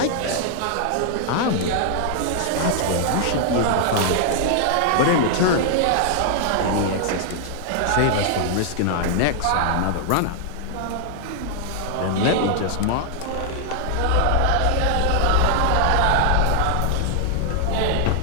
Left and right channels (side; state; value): both; different; correlation -0.01